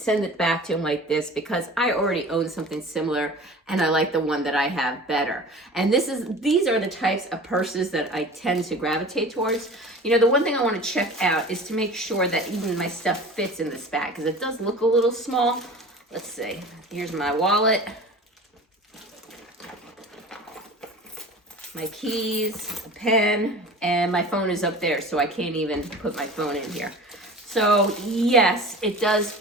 it back to him like this because I already own something similar and I like the one that I have better. And these are the types of purses that I tend to gravitate towards. You know, the one thing I wanna check out is to make sure that even my stuff fits in this bag because it does look a little small. Let's see, here's my wallet. My keys, a pen, and my phone is up there, so I can't even put my phone in here. So yes, it does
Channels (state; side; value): normal; both; correlation 0.39